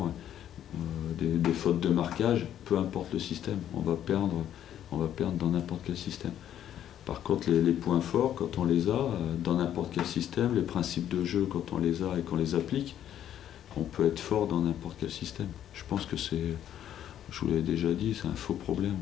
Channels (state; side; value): quieter; right; 10.7 dB